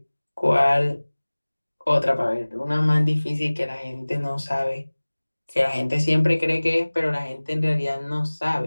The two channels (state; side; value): inverted; both; correlation -1.00